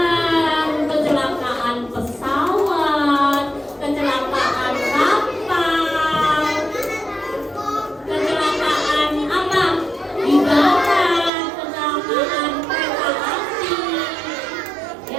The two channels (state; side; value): drops out; left; at 11.3 s